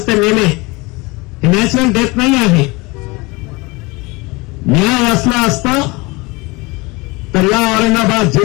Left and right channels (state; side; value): quieter; right; 24.9 dB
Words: ते मेले, हे नॅचरल डेथ नाही आहे. न्याय असला असता तर या औरंगाबाद